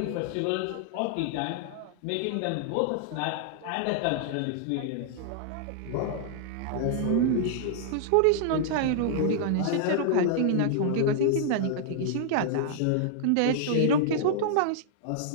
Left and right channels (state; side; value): different; both; correlation -0.01